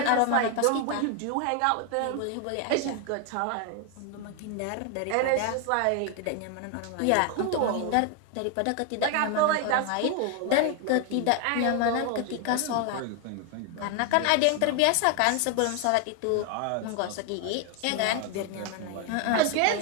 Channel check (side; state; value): both; different; correlation 0.01